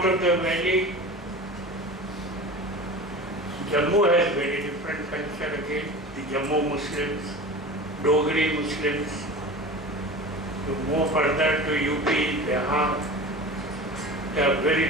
of the valley, Jammu has very different culture again. The Jammu Muslims, Dogri Muslims. You move further to UP, Bihar, they have very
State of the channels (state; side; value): normal; both; correlation 0.33